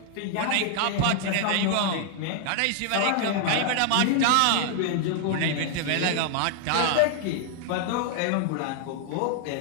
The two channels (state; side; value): different; both; correlation 0.00